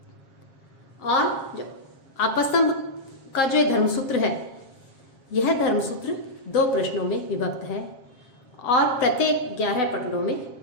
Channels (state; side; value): late; right; 7.4 ms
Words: और जो आपस्तंभ का जो धर्मसूत्र है यह धर्मसूत्र 2 प्रश्नों में विभक्त है और प्रत्येक 11 पटलों में